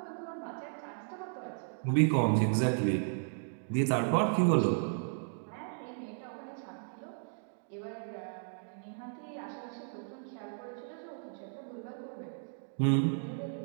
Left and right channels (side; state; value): left; silent; digital silence